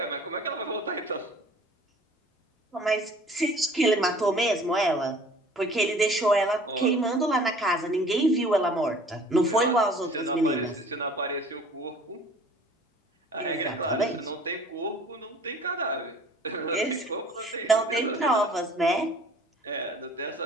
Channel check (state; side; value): normal; both; correlation 0.50